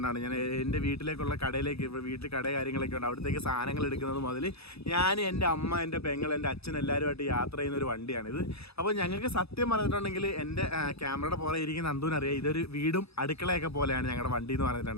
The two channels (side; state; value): right; late; 0.78 ms